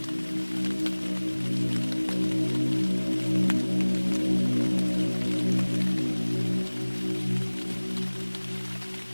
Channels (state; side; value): inverted; both; correlation -1.00